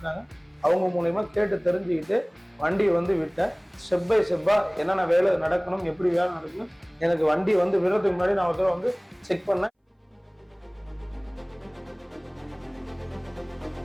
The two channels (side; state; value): both; identical; correlation 1.00